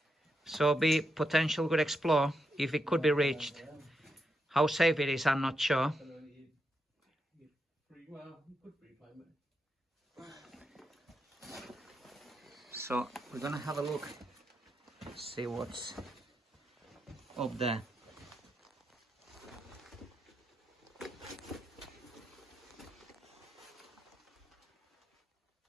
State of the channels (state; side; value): normal; both; correlation 0.84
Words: So be potential good explore if it could be reached. How safe it is, I'm not sure. So we're gonna have a look, see what's up there.